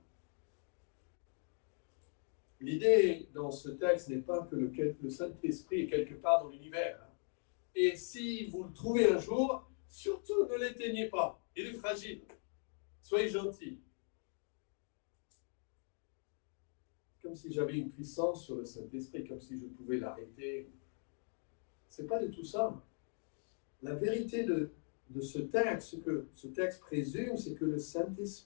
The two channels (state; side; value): silent; right; 51 dB below the other